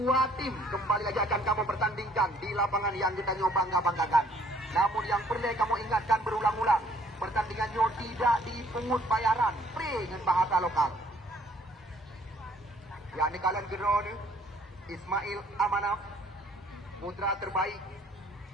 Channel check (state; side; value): normal; both; correlation 0.61